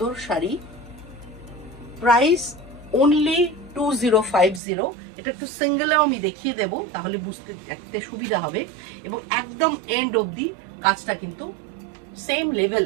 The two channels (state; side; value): drops out; left; at 4.6 s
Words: শাড়ি। Price only 2050। এটা একটু সিঙ্গেলেও আমি দেখিয়ে দেবো, তাহলে বুঝতে দেখতে সুবিধা হবে। এবং একদম এন্ড অবধি কাজটা কিন্তু সেম